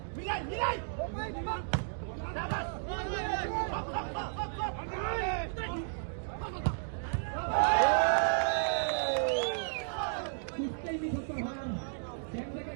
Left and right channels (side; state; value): left; silent; digital silence